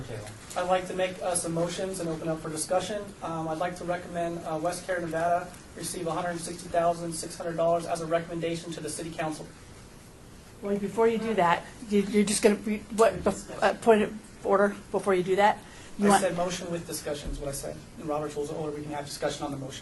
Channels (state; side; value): identical; both; correlation 1.00